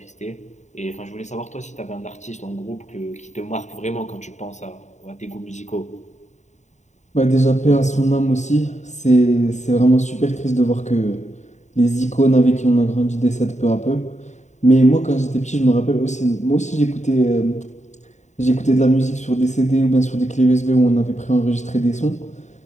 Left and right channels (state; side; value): late; right; 0.34 ms